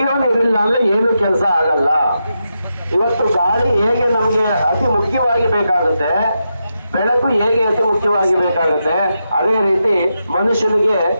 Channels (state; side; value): inverted; both; correlation -0.86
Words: ನೀರಿಲ್ಲ ಅಂದ್ರೆ ಏನು ಕೆಲಸ ಆಗಲ್ಲ. ಇವತ್ತು ಗಾಳಿ ಹೇಗೆ ನಮಗೆ ಅತಿ ಮುಖ್ಯವಾಗಿ ಬೇಕಾಗುತ್ತೆ, ಬೆಳಕು ಹೇಗೆ ಅತಿ ಮುಖ್ಯವಾಗಿ ಬೇಕಾಗುತ್ತೆ, ಅದೇ ರೀತಿ ಮನುಷ್ಯನಿಗೆ